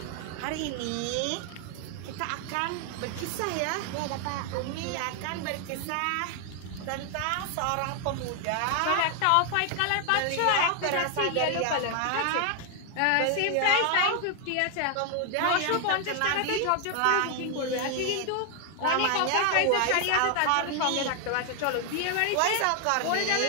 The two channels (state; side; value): different; both; correlation 0.00